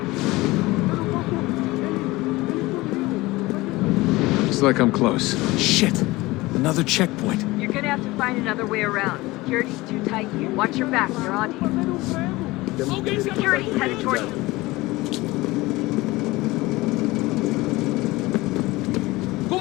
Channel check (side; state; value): right; quieter; 20.3 dB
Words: Looks like I'm close. Shit! Another checkpoint. You're gonna have to find another way around. Security's too tight here. Watch your back, they're on you. Security's headed toward you.